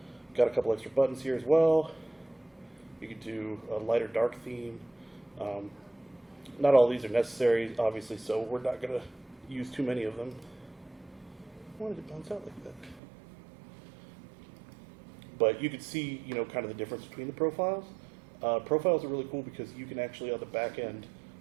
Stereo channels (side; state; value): left; drops out; at 13.0 s